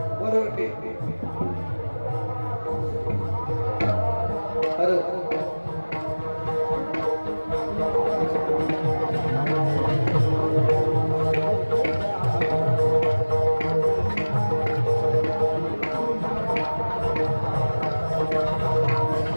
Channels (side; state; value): both; inverted; correlation -1.00